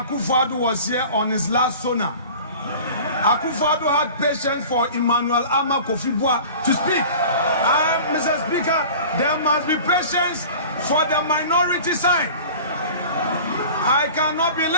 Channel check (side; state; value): both; inverted; correlation -0.41